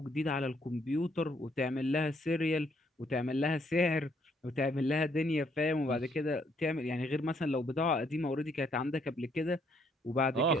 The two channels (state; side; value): normal; both; correlation 0.69